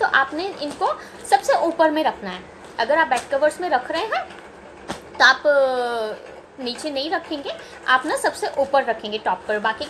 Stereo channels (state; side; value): identical; both; correlation 1.00